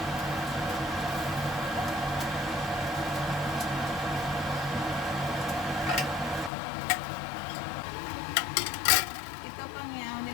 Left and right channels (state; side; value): drops out; right; at 6.5 s